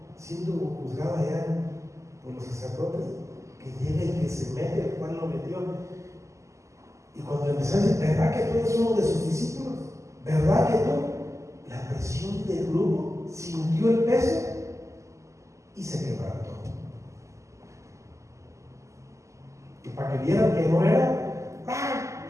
siendo juzgado allá por los sacerdotes, que llega y que se mete, el cual lo metió. Y cuando empezó a decir, ¿verdad que tú eres uno de sus discípulos? ¿Verdad que tú? La presión del grupo sintió el peso y se quebrantó. Y para que vieran que no era,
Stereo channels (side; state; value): left; late; 0.15 ms